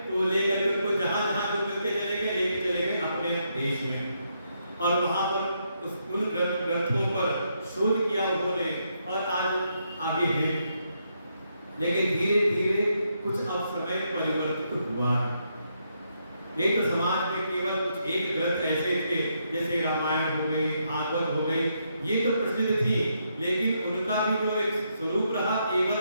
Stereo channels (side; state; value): both; inverted; correlation -0.78